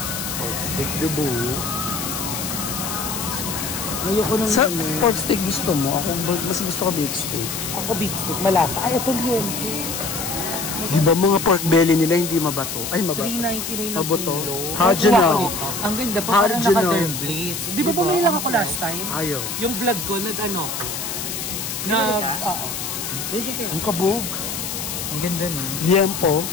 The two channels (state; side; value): noise; left; hiss, 5 dB below the sound